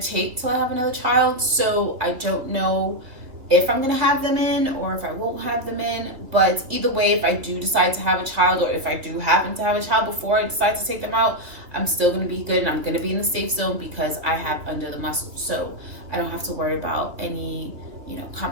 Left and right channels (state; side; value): late; left; 2.3 ms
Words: take till I have another child, so I don't know if I'm going to have them in or if I won't have them in. But either way, if I do decide to have a child, or if I do happen to have a child before I decide to take them out, I'm still going to be good, and I'm going to be in the safe zone because I have under the muscle. So I don't have to worry about any, you know,